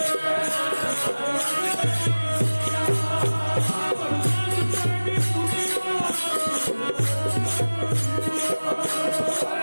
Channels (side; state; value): both; inverted; correlation -1.00